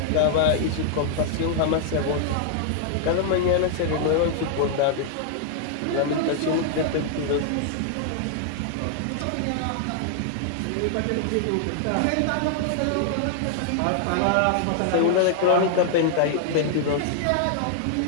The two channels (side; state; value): both; different; correlation -0.01